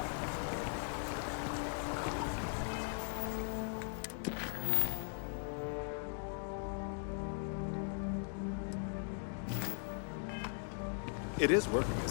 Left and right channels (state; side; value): silent; right; 51 dB below the other